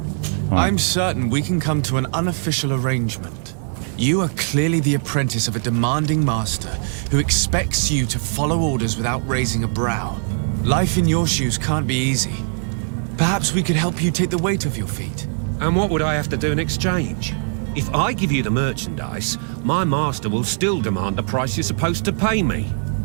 I'm certain we can come to an unofficial arrangement. You are clearly the apprentice of a demanding master who expects you to follow orders without raising a brow. Life in your shoes can't be easy. Perhaps we could help you take the weight off your feet. And what would I have to do in exchange? If I give you the merchandise, my master will still demand the price you're supposed to pay me.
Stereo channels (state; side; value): silent; left; digital silence